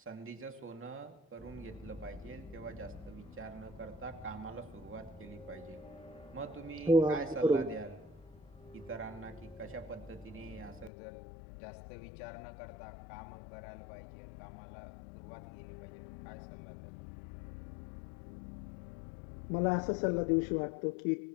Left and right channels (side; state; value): right; drops out; at 10.9 s